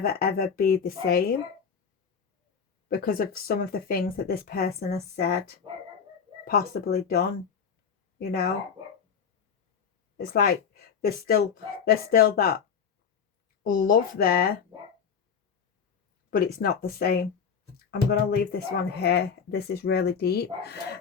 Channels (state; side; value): quieter; right; 6.7 dB